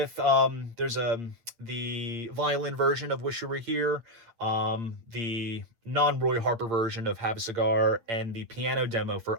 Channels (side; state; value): left; late; 8.8 ms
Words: there's the violin version of Wish You Were Here, the non-Roy Harper version of Have a Cigar, and the piano demo